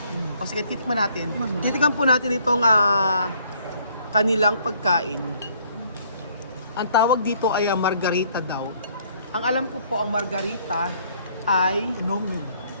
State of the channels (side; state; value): both; inverted; correlation -0.63